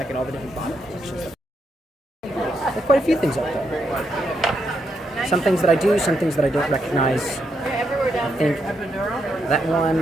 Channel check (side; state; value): both; normal; correlation 0.80